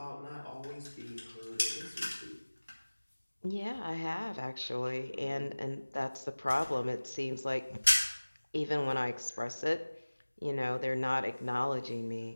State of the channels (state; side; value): inverted; both; correlation -1.00